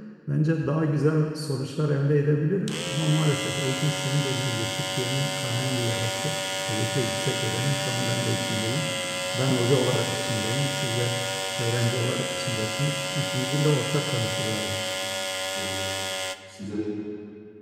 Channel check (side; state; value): both; identical; correlation 1.00